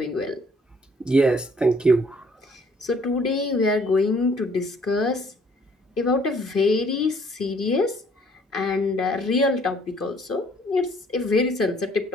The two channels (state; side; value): normal; both; correlation 0.61